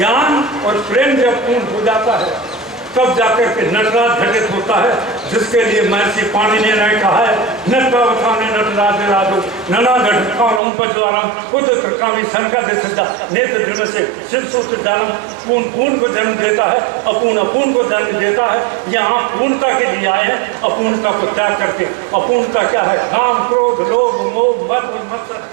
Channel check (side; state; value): left; drops out; at 10.6 s